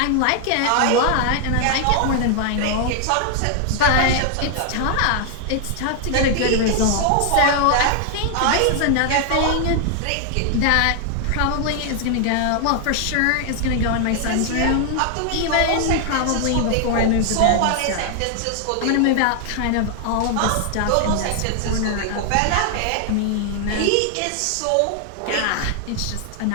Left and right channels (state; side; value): different; both; correlation 0.00